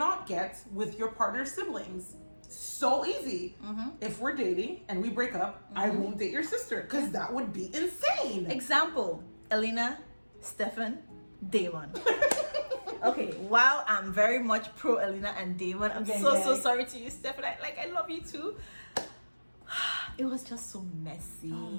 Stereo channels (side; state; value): both; inverted; correlation -1.00